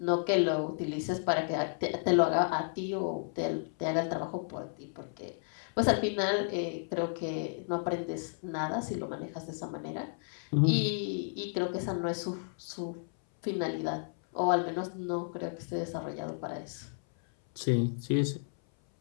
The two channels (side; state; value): right; silent; 56 dB below the other